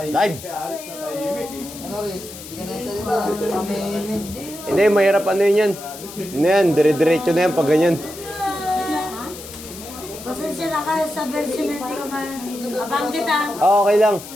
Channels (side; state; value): left; noise; hiss, 14 dB below the sound